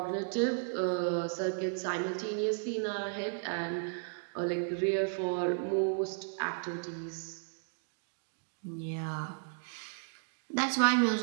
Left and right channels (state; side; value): silent; left; digital silence